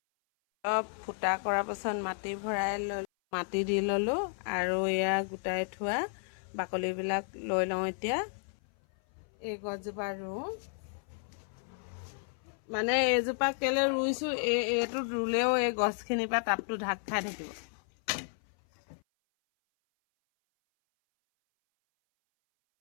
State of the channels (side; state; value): right; silent; 56 dB below the other